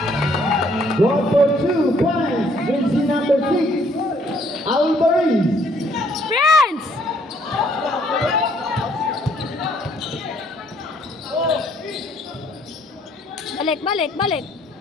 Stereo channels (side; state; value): both; normal; correlation 0.65